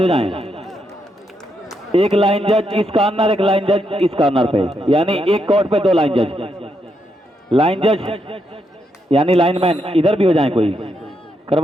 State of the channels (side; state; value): both; normal; correlation 0.80